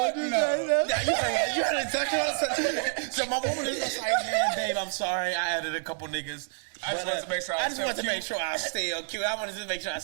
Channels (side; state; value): left; silent; 59 dB below the other